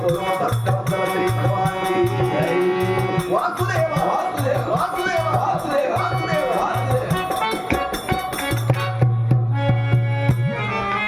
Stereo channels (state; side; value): identical; both; correlation 1.00